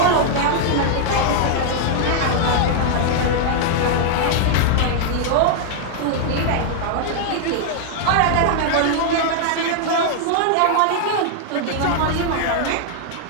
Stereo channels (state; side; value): different; both; correlation 0.00